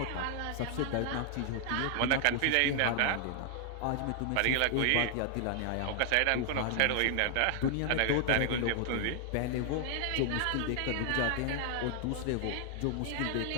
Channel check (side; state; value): both; different; correlation 0.00